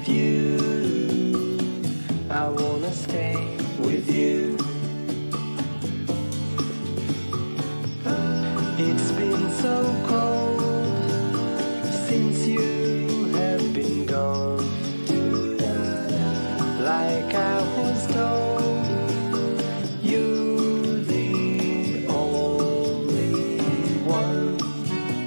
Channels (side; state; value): both; inverted; correlation -1.00